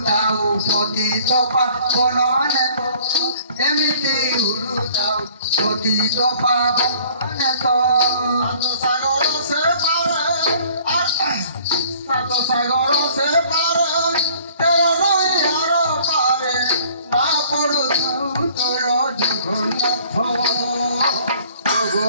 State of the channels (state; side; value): inverted; both; correlation -0.54